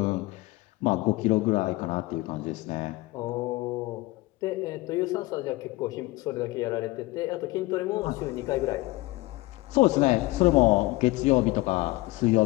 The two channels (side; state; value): right; quieter; 20.4 dB